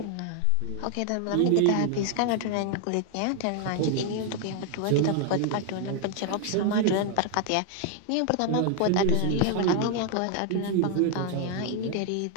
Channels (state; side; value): different; both; correlation 0.00